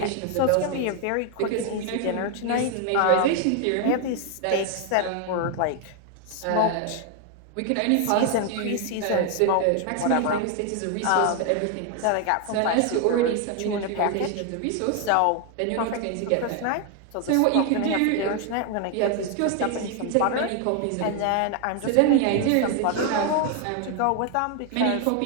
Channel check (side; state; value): both; different; correlation 0.01